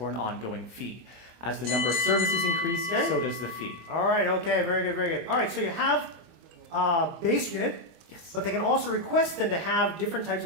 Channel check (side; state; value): left; late; 24 ms